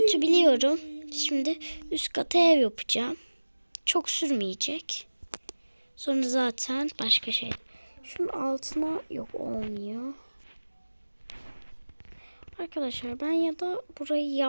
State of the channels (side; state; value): both; inverted; correlation -1.00